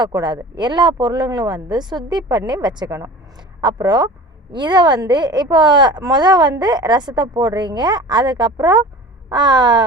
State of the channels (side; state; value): both; normal; correlation 0.38